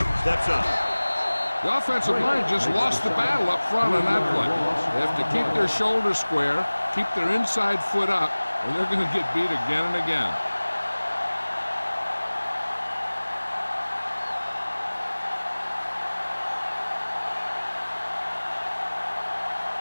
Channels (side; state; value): both; inverted; correlation -1.00